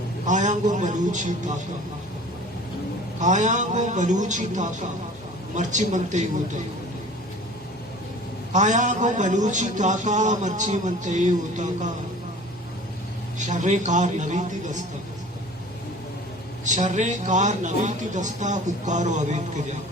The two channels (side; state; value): both; normal; correlation 0.44